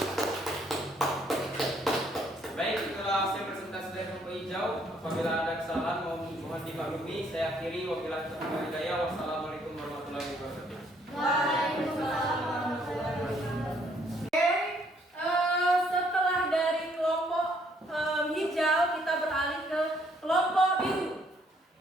Baik, itulah hasil presentasi dari kelompok hijau. Apabila ada kesalahan mohon dimaklumi. Saya akhiri, wabillahi taufiq wal hidayah. Wassalamualaikum warahmatullahi wabarakatuh. Waalaikumsalam warahmatullahi wabarakatuh. Oke, setelah dari kelompok hijau kita beralih ke kelompok biru.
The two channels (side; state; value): both; normal; correlation 0.67